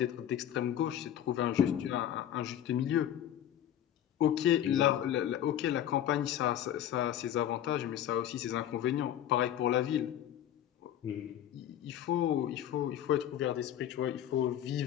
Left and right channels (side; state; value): right; quieter; 10.9 dB